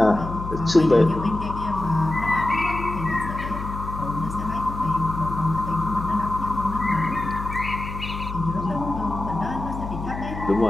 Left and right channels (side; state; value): left; noise; hum, 8 dB below the sound